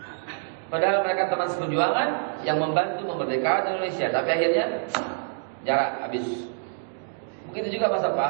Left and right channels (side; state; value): left; silent; digital silence